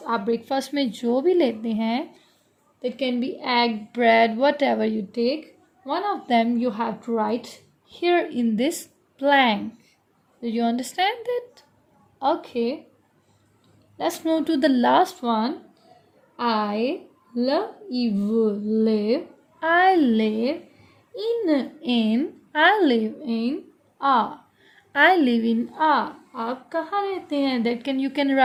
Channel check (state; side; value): identical; both; correlation 1.00